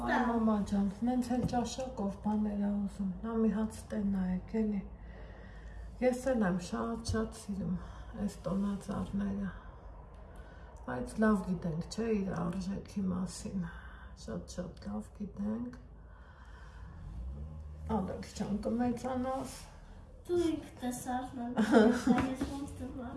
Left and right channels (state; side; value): identical; both; correlation 1.00